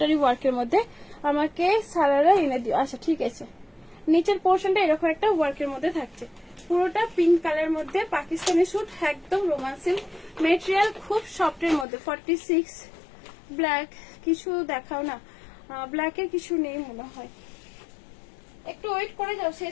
ওয়ার্কের মধ্যে। আমাকে সারারা এনে দিও। আচ্ছা ঠিক আছে। নিচের পোর্শনটা এরকম একটা ওয়ার্কের মধ্যে থাকছে, পুরোটা পিঙ্ক কালার মধ্যে পাকিস্তানি স্যুট, একদম রোমান সিল্ক মেটেরিয়াল, খুব সফটের মধ্যে। 46 ব্ল্যাক কিছু দেখাও না, ব্ল্যাকের কিছু নেই মনে হয়, একটু ওয়েট করে যাও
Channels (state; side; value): drops out; right; at 11.9 s